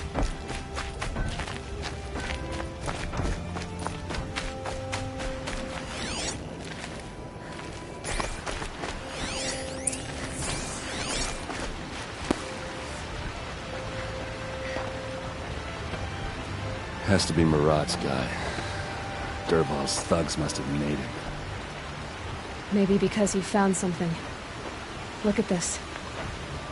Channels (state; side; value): identical; both; correlation 1.00